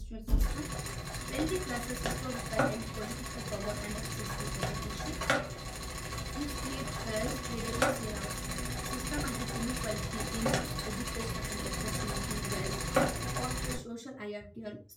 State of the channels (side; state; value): both; identical; correlation 1.00